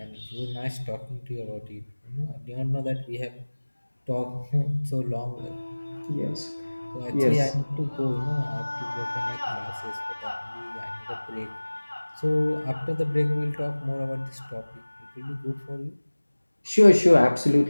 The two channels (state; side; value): inverted; both; correlation -1.00